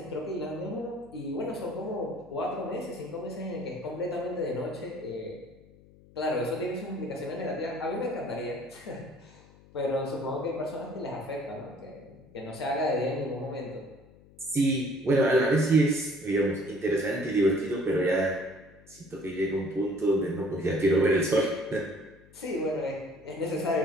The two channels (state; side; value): noise; left; hum, 24 dB below the sound